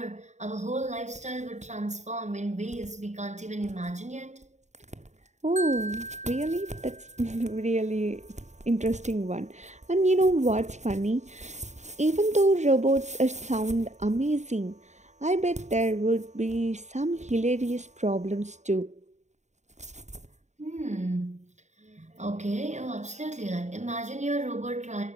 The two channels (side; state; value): left; late; 0.34 ms